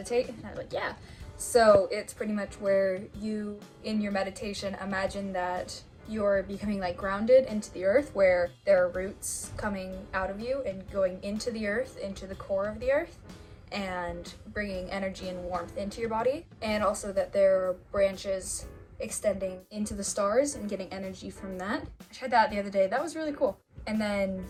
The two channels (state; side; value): identical; both; correlation 1.00